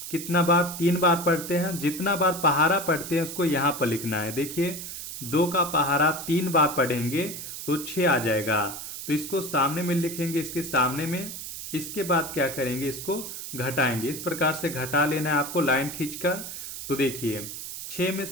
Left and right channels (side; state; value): right; noise; hiss, 8 dB below the sound